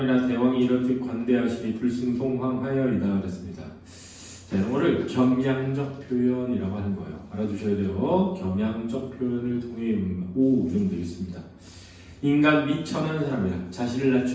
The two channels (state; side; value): identical; both; correlation 1.00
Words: 대왕이 이렇듯 관대하시니 불승송황하여이다 그랬습니다. 자, 이거를 겸양적 표현이라고 하는 거예요. 알아두셔야 돼요. 겸양적 표현을 통해 오 이러면 되겠습니다. 인간 미천한 사람이라 자신을